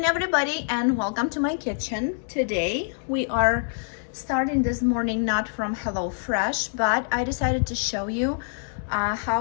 everybody, and welcome to my kitchen. Today we are starting this morning not from HelloFresh, but I decided to show you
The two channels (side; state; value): right; silent; digital silence